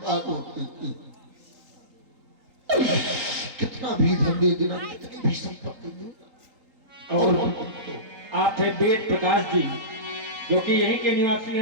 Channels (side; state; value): left; late; 3.8 ms